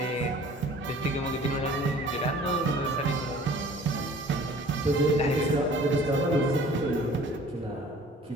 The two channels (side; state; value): both; normal; correlation 0.49